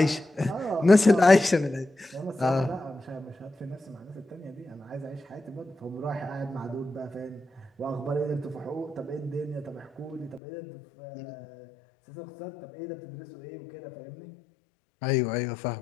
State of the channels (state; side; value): drops out; right; at 10.4 s